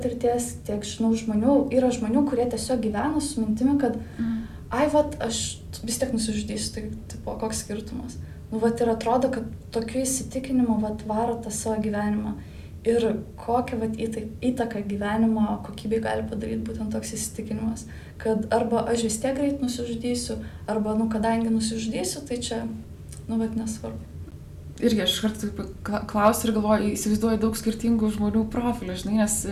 tiek žinau žmonių, yra žmonių, kurie tiesiog gyvena su mintimi, kad aš vis tiek nusižudysiu, tai tipo, koks skirtumas. Ir atrodo, kad tokiu įsitikinimu varo tą savo gyvenimą. Ir kokią įtaką gyvenimo kokybei gali padaryti būtent toks įsitikinimas, kad arba aš vis tiek greit nusižudysiu, arba, kadangi nusižudysiu, tai čia, nesvarbu. Irgi aš kartu klausiu ir galvoju, įsivaizduoju daug skirtingų žmonių profilių, žinai, nes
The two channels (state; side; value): identical; both; correlation 1.00